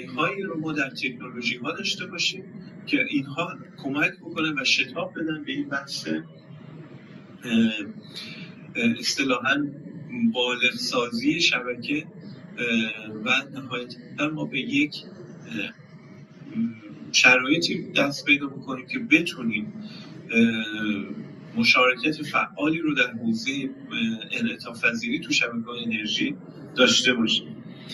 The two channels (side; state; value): both; identical; correlation 1.00